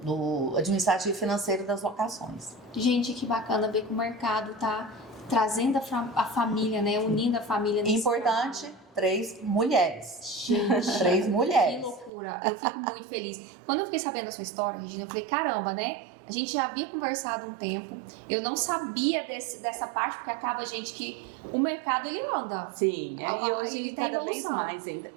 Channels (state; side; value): drops out; left; at 12.1 s